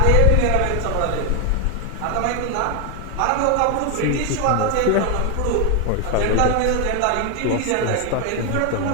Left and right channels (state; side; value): different; both; correlation 0.01